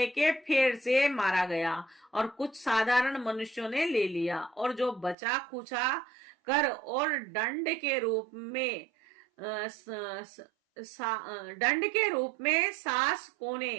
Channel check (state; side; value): drops out; left; at 5.2 s